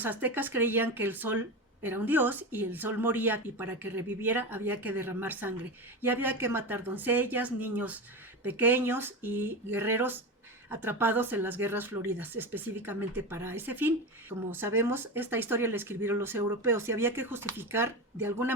aztecas creían que el sol era un dios y el sol moría, y para que reviviera había que derramar sangre y había que matar doncellas, niños pequeños y guerreros atrapados en las guerras floridas, específicamente para ese fin. Como sabemos, esta historia la escribieron los europeos y había que justificar de alguna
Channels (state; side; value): normal; both; correlation 0.21